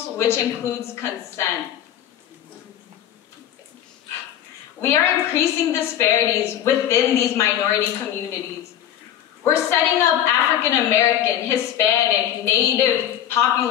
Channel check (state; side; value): quieter; right; 10.8 dB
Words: which includes consent. We are increasing disparities within these minority communities. We're setting up African American, Hispanic, Native